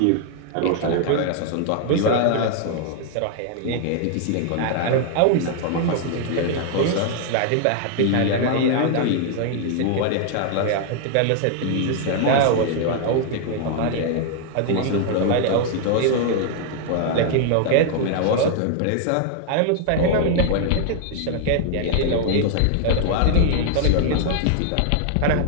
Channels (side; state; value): both; different; correlation 0.00